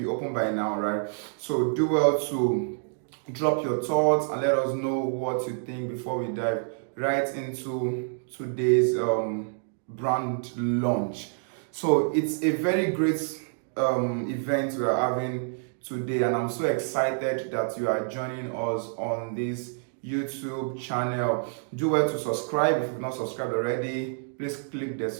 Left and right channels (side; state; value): left; silent; digital silence